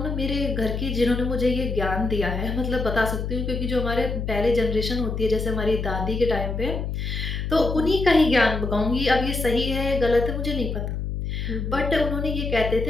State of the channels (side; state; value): left; noise; hum, 3 dB below the sound